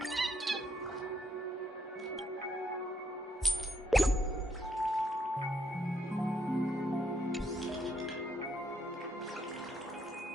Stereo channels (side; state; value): both; normal; correlation 0.74